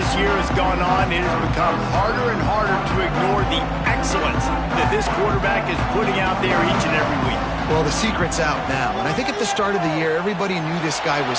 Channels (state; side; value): identical; both; correlation 1.00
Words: year has gone on, it has become harder and harder to ignore the excellence that this quarterback is putting out there each and every week. Well, the secret's out now, and I think at the start of the year, everybody knew this guy